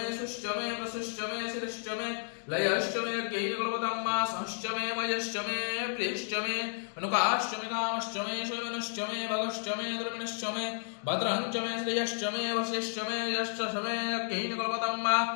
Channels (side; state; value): right; silent; digital silence